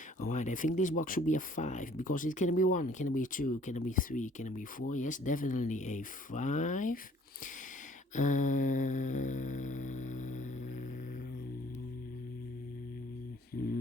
Alright, I think this box should be a 5 because it can be 1, can be 2, can be 3, can be 4. Yes, definitely a 5.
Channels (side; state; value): both; normal; correlation 0.57